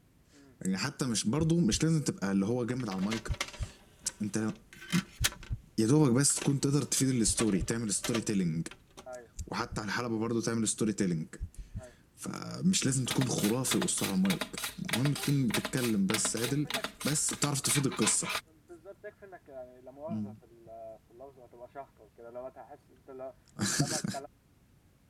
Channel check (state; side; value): identical; both; correlation 1.00